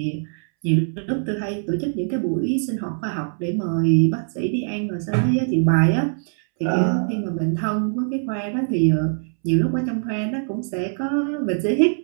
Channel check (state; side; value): silent; left; 64 dB below the other